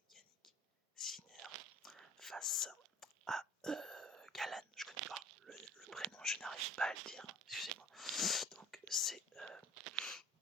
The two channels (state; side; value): normal; both; correlation 0.46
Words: Sinner face à Galan. Je connais pas le prénom, je n'arrive pas à le dire, excusez-moi. Donc c'est